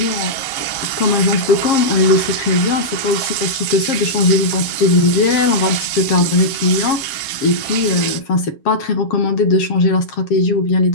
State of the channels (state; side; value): late; right; 7.4 ms